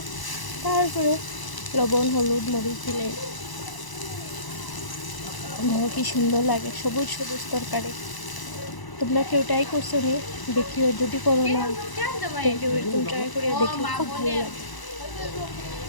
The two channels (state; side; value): late; right; 1.0 ms